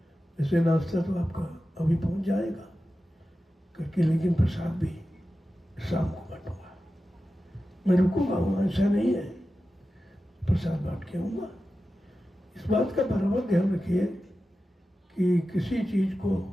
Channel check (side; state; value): both; normal; correlation 0.93